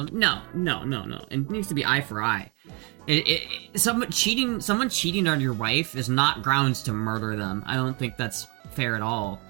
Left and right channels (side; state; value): left; quieter; 30.9 dB